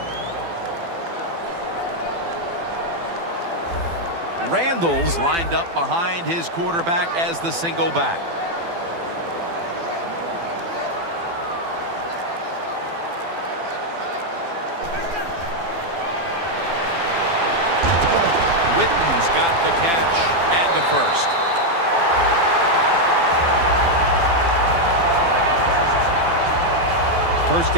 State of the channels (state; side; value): late; left; 12 ms